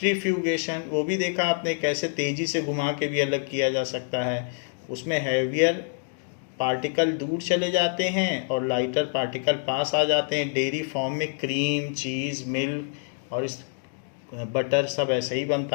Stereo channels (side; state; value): right; silent; digital silence